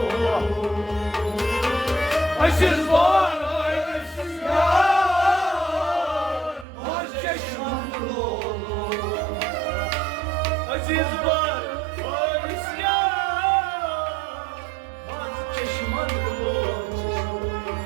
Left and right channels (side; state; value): left; drops out; at 6.7 s